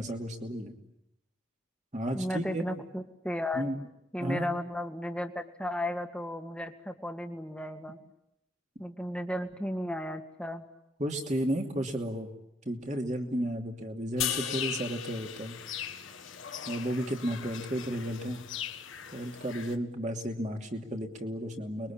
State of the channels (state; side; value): normal; both; correlation 0.72